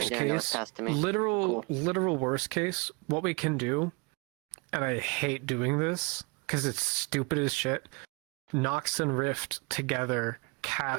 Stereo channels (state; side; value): quieter; left; 30.2 dB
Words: right there. That was case, passed to me. literal worst case, what we can do, and I hate doing this because it's stupid as shit. Nox and Rift together